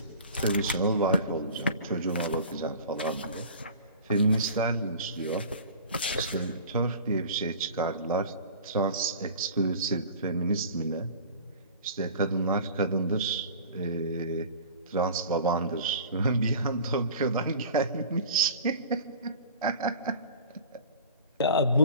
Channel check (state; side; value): inverted; both; correlation -0.41